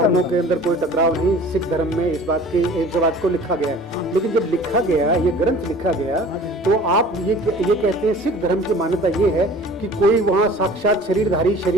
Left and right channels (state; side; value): normal; both; correlation 0.46